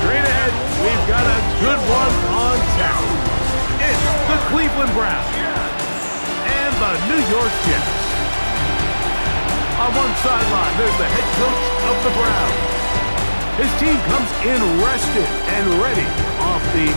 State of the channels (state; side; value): inverted; both; correlation -1.00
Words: Straight ahead, we've got a good one on tap. It's the Cleveland Browns and the New York Jets. On one sideline, there's the head coach of the Browns. His team comes in rested and ready off the